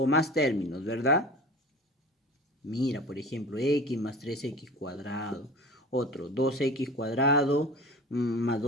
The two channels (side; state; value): both; normal; correlation 0.37